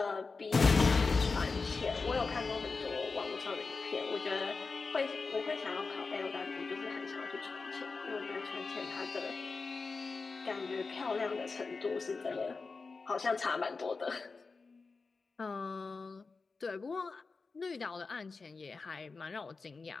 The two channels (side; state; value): right; quieter; 4.3 dB